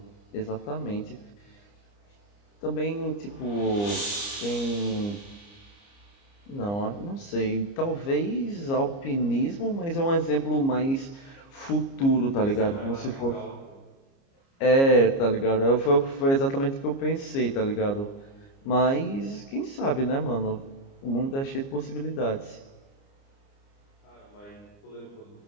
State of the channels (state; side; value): late; right; 29 ms